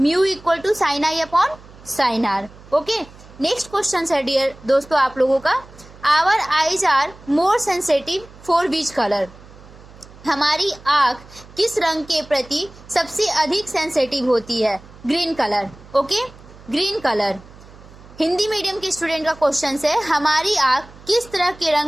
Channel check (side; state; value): right; noise; hum, 21 dB below the sound